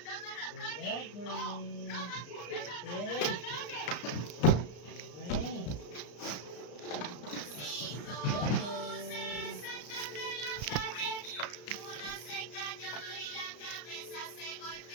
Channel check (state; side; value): late; right; 34 ms